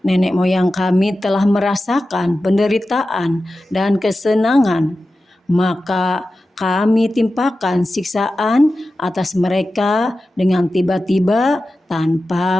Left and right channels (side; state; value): both; normal; correlation 0.94